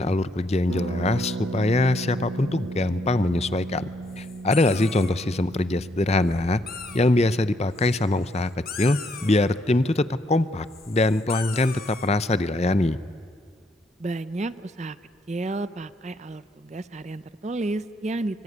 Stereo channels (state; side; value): normal; both; correlation 0.72